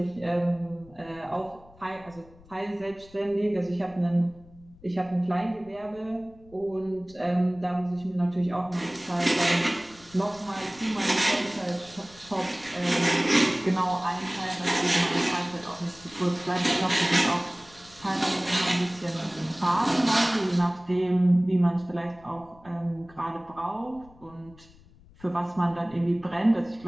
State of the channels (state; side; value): noise; left; rumble, 25 dB below the sound